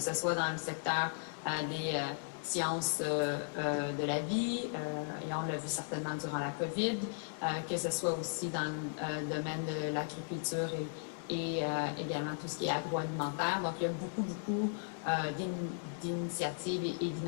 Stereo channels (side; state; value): right; silent; 54 dB below the other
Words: soit dans le secteur des sciences de la vie, et on l'a vu certainement durant la COVID, que ce soit aussi dans le domaine de l'agriculture et également tout ce qui est agroalimentaire. Donc, il y a beaucoup d'initiatives et